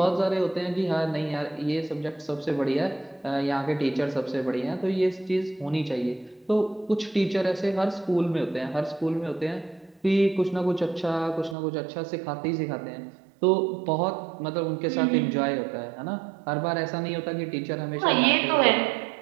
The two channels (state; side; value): drops out; left; at 11.6 s